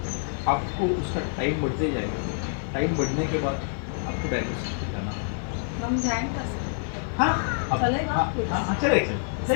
आपको उसका टाइम बढ़ते जाएगा। टाइम बढ़ने के बाद आपको डायलिसिस पे जाना है। हम जाएंगे सर। हाँ चलेगा? हाँ चलेगा,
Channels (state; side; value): silent; right; digital silence